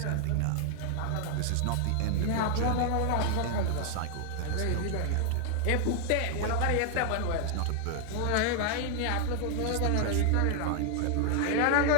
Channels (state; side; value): different; both; correlation 0.00